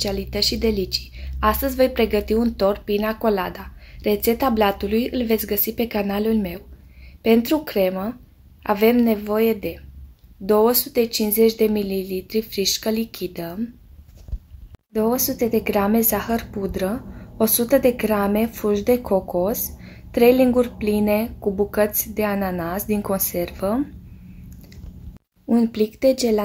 și delicii. Astăzi voi pregăti un tort pina colada. Rețeta blatului îl veți găsi pe canalul meu. Pentru cremă avem nevoie de 250 de ml frișcă lichidă, 200 de grame zahăr pudră, 100 de grame fulgi de cocos, 3 linguri pline cu bucăți de ananas din conservă, un plic de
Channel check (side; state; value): both; identical; correlation 1.00